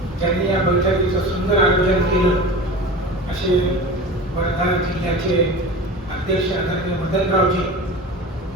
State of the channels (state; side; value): normal; both; correlation 0.33